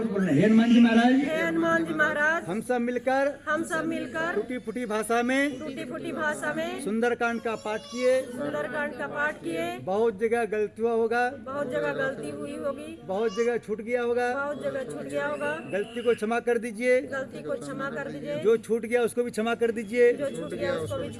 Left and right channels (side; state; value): both; identical; correlation 1.00